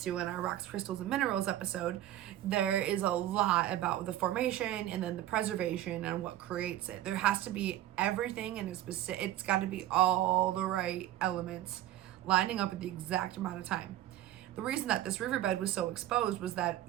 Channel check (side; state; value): left; quieter; 13.6 dB